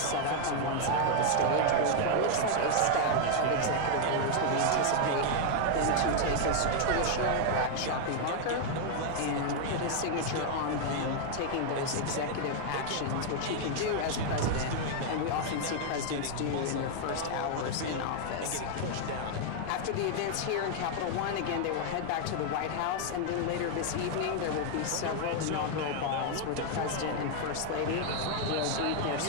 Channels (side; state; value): both; different; correlation 0.00